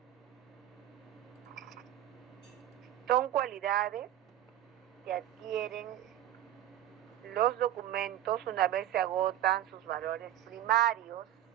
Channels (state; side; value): quieter; left; 12.0 dB